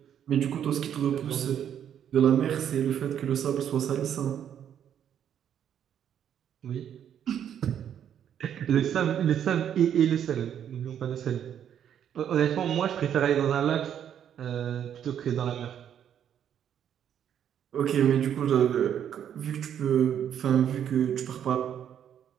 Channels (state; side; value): quieter; left; 9.4 dB